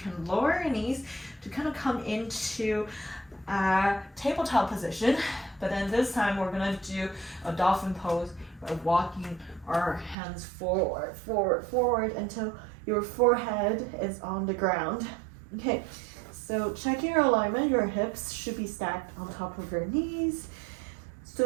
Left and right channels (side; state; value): left; drops out; at 10.2 s